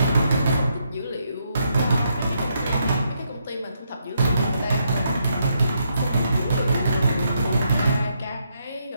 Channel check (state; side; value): inverted; both; correlation -0.78